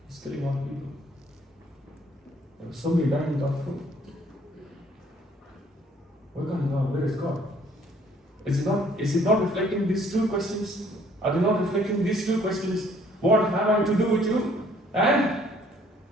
He's killing all people. There are so many dying without food. Where is God? Is it not reflecting these two questions? Are they not reflecting these two questions? What have I to do with you? And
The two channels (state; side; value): normal; both; correlation 0.61